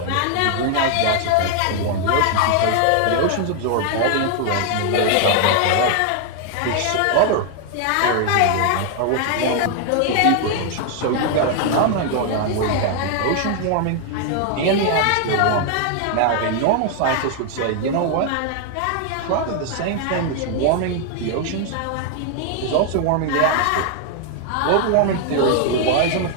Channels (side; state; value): both; different; correlation 0.00